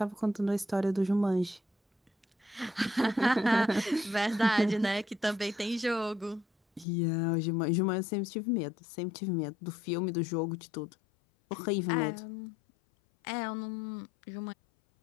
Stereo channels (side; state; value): right; drops out; at 6.9 s